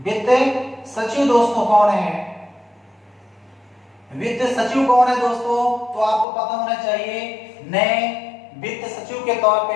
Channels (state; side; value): drops out; right; at 6.2 s